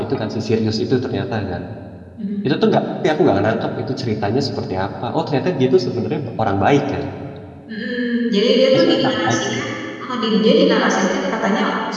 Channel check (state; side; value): identical; both; correlation 1.00